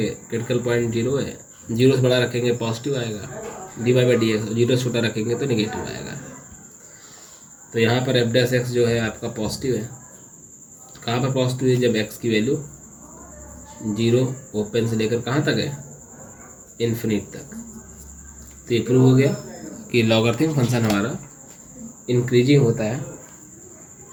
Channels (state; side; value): identical; both; correlation 1.00